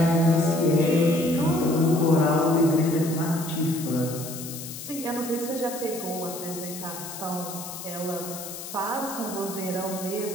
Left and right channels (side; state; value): left; noise; hiss, 10 dB below the sound